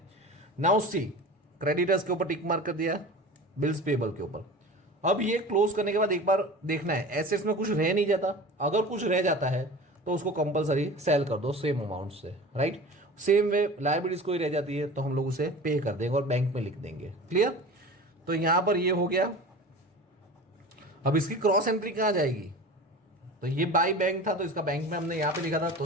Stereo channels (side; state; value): both; normal; correlation 0.36